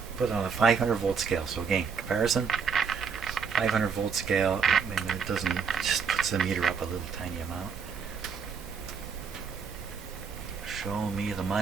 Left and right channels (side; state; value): left; quieter; 5.9 dB